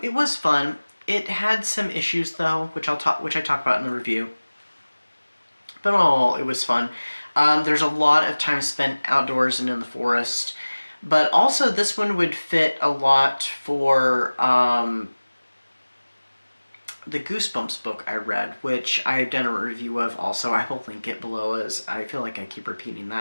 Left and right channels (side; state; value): both; inverted; correlation -1.00